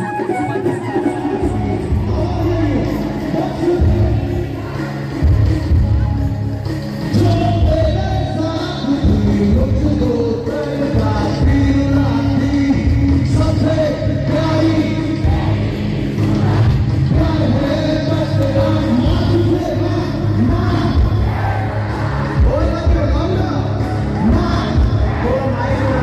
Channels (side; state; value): both; identical; correlation 1.00